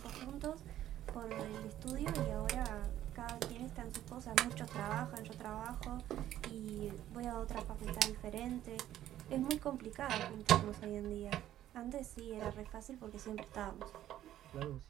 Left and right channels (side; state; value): left; quieter; 12.5 dB